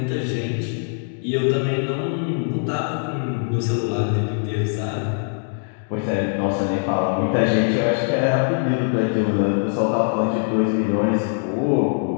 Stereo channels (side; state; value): right; silent; 64 dB below the other